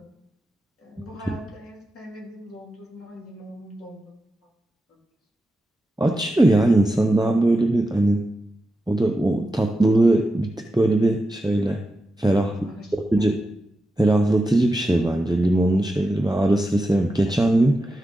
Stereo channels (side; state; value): both; normal; correlation 0.90